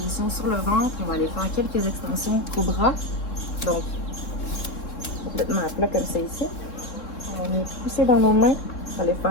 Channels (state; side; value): late; right; 3.7 ms